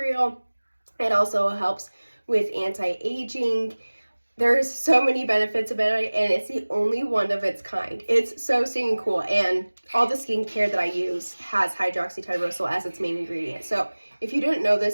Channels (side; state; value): both; inverted; correlation -1.00